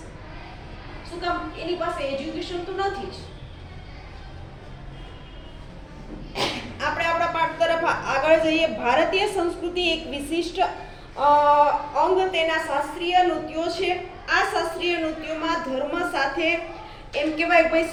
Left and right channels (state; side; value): identical; both; correlation 1.00